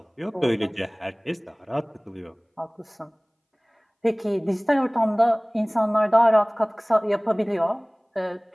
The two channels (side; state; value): both; identical; correlation 1.00